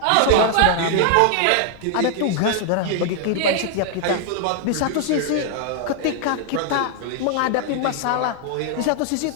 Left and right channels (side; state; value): both; different; correlation 0.00